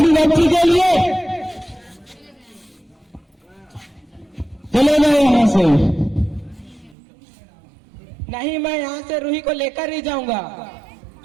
बच्ची के लिए चले गए यहाँ से। नहीं, मैं यहाँ से रूही को लेकर ही जाऊंगा,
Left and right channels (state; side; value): drops out; left; at 7.0 s